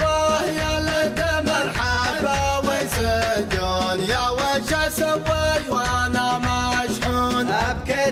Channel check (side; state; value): both; identical; correlation 1.00